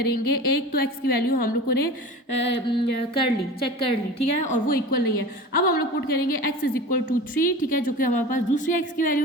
एक तो एक्स की वैल्यू हम लोगों ने चेक कर ली, ठीक है, और वो इक्वल नहीं है। अब हम लोग पुट करेंगे x इज इक्वल टू 3, ठीक है, जो कि हमारे पास दूसरी x की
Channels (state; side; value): normal; both; correlation 0.35